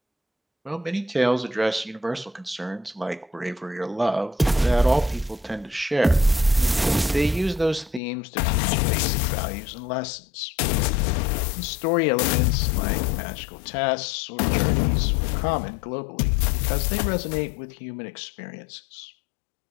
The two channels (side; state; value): right; drops out; at 8.0 s